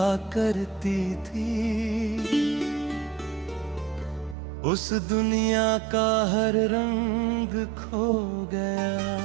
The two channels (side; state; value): left; drops out; at 4.4 s